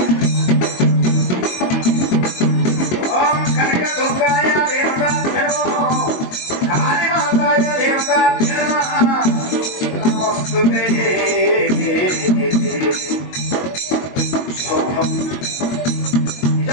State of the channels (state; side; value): late; right; 22 ms